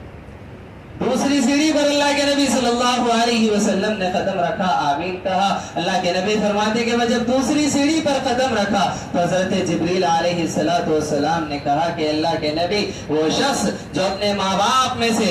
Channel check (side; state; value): both; identical; correlation 1.00